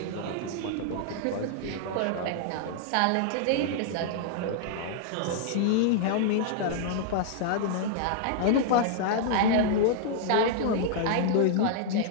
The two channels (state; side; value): different; both; correlation -0.01